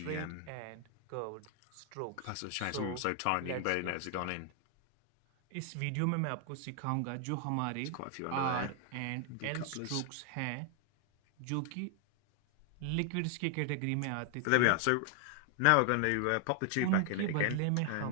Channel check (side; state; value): both; different; correlation 0.00